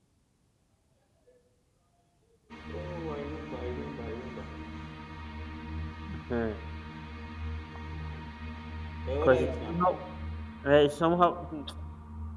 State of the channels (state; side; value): identical; both; correlation 1.00